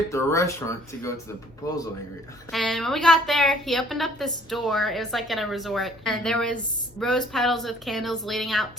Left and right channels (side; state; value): both; normal; correlation 0.58